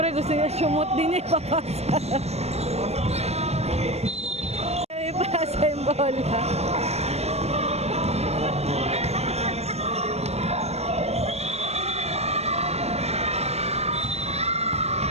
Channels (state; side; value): late; left; 0.31 ms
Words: gusto niya sumot din eh, papasa. Ipasa yung bola.